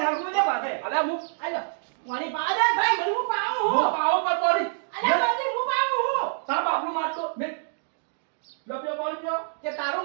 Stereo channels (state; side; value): silent; left; digital silence